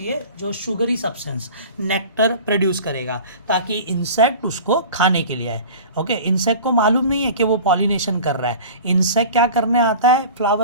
जो शुगरी सब्सटेंस नेक्टर प्रोड्यूस करेगा ताकि इंसेक्ट उसको खाने के लिए आए। ओके, इंसेक्ट को मालूम नहीं है कि वो पॉलिनेशन कर रहा है, इंसेक्ट क्या करने आता है?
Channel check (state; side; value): inverted; both; correlation -0.39